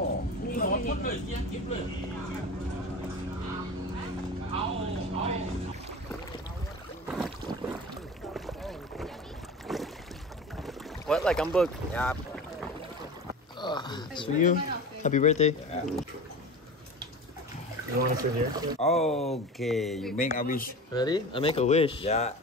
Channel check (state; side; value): normal; both; correlation 0.33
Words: What? Like I'm booked? Yeah. It's for you. Happy birthday. You want to sit here? Okay, you make a wish. Ready? I make a wish. Yeah.